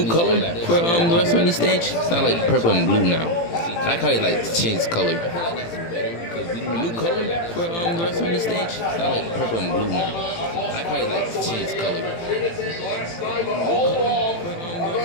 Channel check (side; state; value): right; late; 18 ms